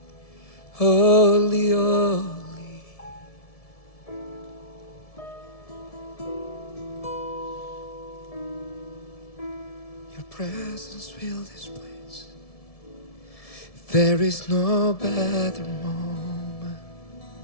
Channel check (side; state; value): right; late; 1.7 ms